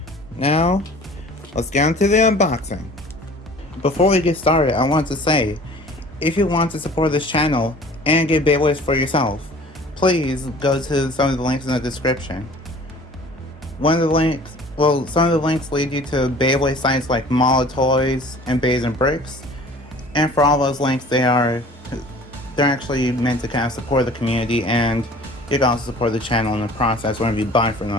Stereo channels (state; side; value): normal; both; correlation 0.47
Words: now, let's get into the unboxing. Before we get started, I want to say, if you want to support this channel and get Beyblades for yourself, please go to some of the links in the description. Some of the links lead you to Beyblade sites like Mall of Toys and Bays and Bricks. And for all those links, they're actually meant to kind of support the community, and you can also support the channel in the process whenever you buy from